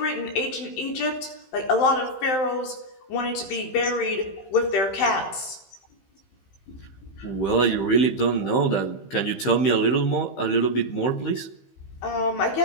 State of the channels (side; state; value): right; late; 15 ms